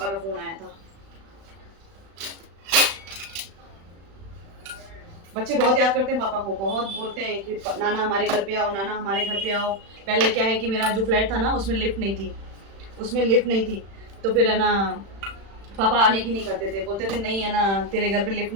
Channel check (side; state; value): left; late; 36 ms